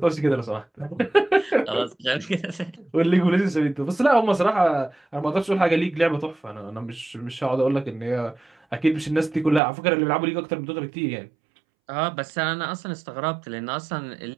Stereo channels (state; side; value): drops out; left; at 9.6 s